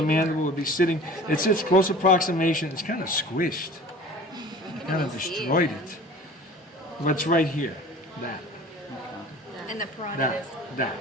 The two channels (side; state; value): both; normal; correlation 0.43